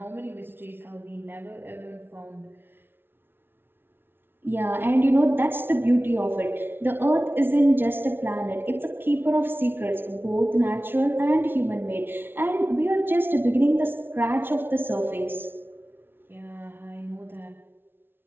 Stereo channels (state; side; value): late; left; 0.11 ms